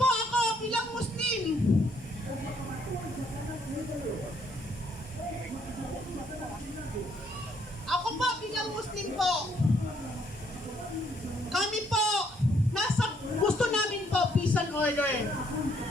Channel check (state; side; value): normal; both; correlation 0.68